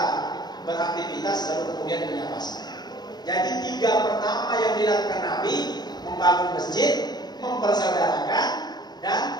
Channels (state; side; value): late; right; 0.20 ms